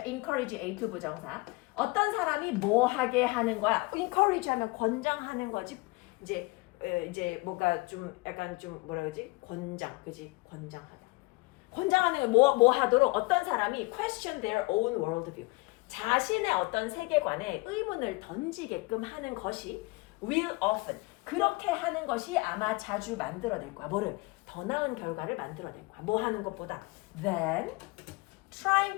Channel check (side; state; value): right; quieter; 24.6 dB